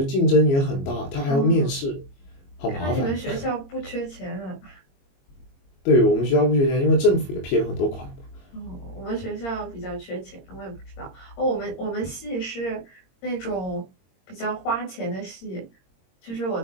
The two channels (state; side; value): late; right; 22 ms